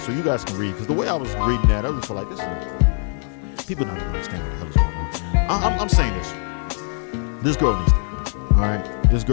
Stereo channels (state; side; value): silent; right; 57 dB below the other